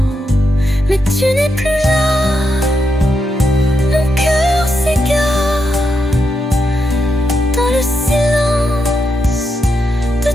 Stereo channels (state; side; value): normal; both; correlation 0.83